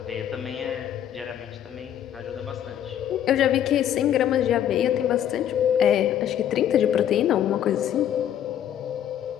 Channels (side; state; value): right; quieter; 10.4 dB